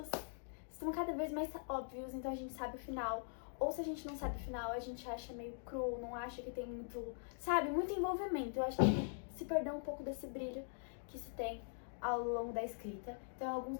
estão cada vez mais óbvios, então a gente sabe o final. Ou se a gente não sabe o final, a gente acha meio cru, não acha que tem muito, sabe, muito envolvimento. Eu acho que se perdeu um pouco desse brilho que se tem ao longo da escrita. Então,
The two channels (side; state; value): right; silent; digital silence